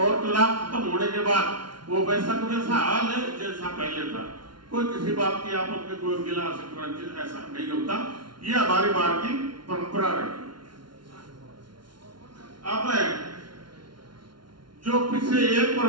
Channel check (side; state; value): left; late; 0.72 ms